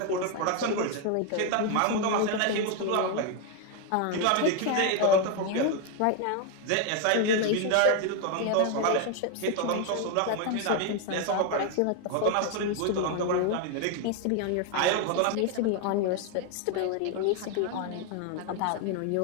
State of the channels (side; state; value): both; different; correlation 0.01